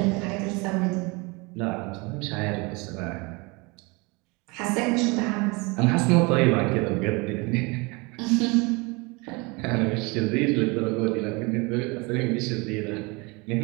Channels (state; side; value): quieter; left; 27.2 dB